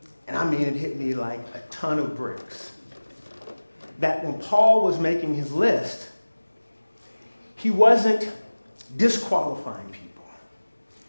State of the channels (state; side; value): inverted; both; correlation -1.00